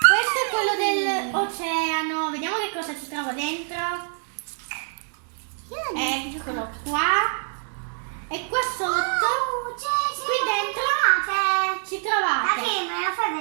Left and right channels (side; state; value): left; silent; 62 dB below the other